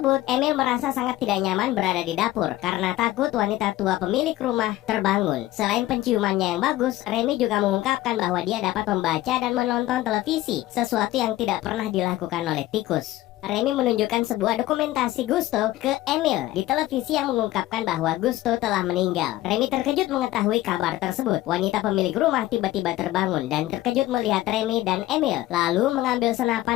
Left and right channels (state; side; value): quieter; right; 16.0 dB